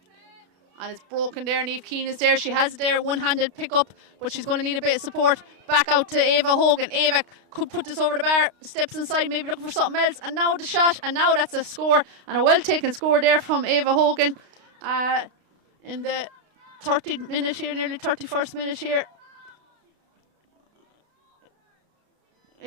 And it's broken there. Niamh Keane is there. She has it there. One-handed pick up, but she's going to need a bit of support. Back out to Ava Hogan. Ava could put this over the bar. Steps inside, maybe looking for something else. And now the shot. And now that's a score. And a well-taken score there from Ava Hogan. In the 30th minute here, nearly 31st minute here.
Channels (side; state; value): left; late; 32 ms